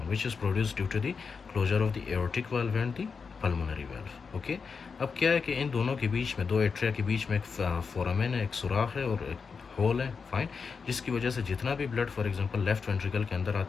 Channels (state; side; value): quieter; right; 5.4 dB